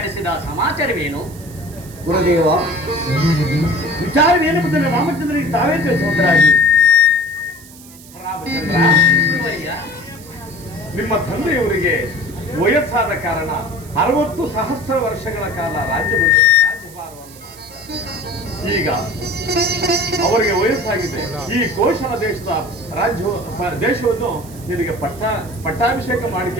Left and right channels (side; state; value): right; noise; hiss, 20 dB below the sound